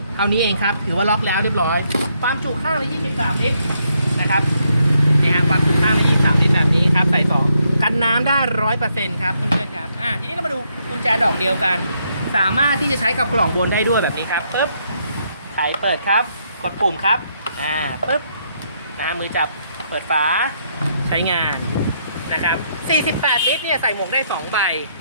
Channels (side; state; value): both; inverted; correlation -0.75